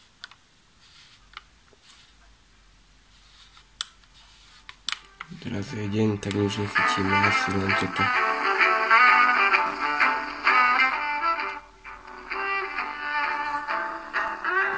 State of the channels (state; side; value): identical; both; correlation 1.00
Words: Teraz je deň, tak už nechytíme asi len toto.